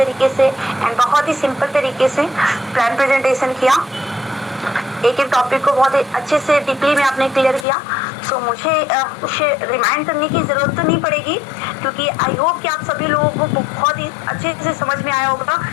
से एंड बहुत ही सिंपल तरीके से प्लान प्रेजेंटेशन किया, एक एक टॉपिक को बहुत ही अच्छे से डीपली में आपने क्लियर किया। सो मुझे उसे रिमाइंड करने की ज़रूरत तो नहीं पड़ेगी क्योंकि आई होप कि आप सभी लोगों को बहुत ही अच्छे से समझ में आया होगा,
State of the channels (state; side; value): drops out; right; at 7.7 s